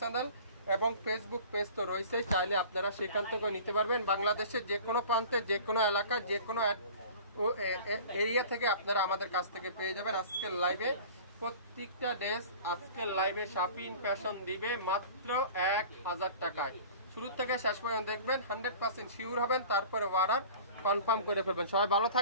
চ্যানেল এবং ফেসবুক পেজ তো রয়েছে, চাইলে আপনারা সেখান থেকে নিতে পারবেন। বাংলাদেশের যে কোনো প্রান্তে, যে কোনো এলাকা, যে কোনো এরিয়া থেকে আপনারা আমাদের কাছ থেকে পেয়ে যাবেন। আজকের লাইভে প্রত্যেকটা ড্রেস, আজকের লাইভে শাপিং ফ্যাশন দিবে মাত্র 1000 টাকায়। শুরু থেকে শেষ পর্যন্ত দেখবেন, 100% শিওর হবেন, তারপরে অর্ডার কনফার্ম করে ফেলবেন। সবাই ভালো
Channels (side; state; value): both; inverted; correlation -0.42